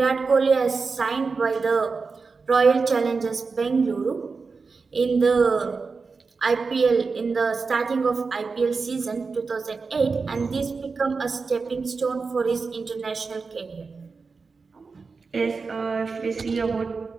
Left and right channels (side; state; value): left; quieter; 4.6 dB